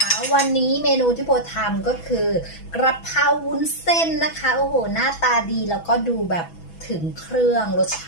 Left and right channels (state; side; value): late; right; 6.1 ms